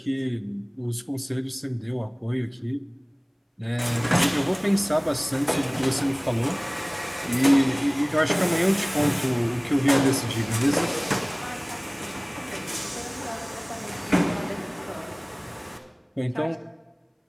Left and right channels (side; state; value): both; identical; correlation 1.00